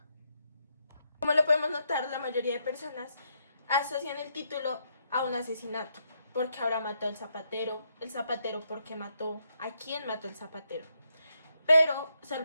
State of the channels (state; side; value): inverted; both; correlation -0.78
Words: Como lo podemos notar, la mayoría de personas asocian el título a un asesinato. ¿Por qué ahora mató al zapatero? ¿El zapatero por qué mató? ¿A quién mató el zapatero? Pero